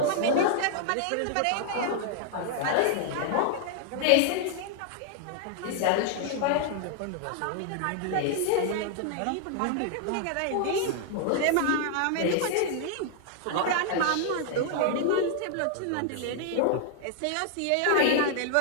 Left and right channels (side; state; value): both; different; correlation 0.00